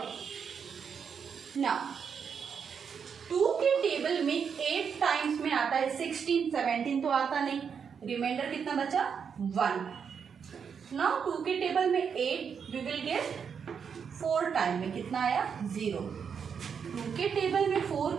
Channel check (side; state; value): left; quieter; 6.8 dB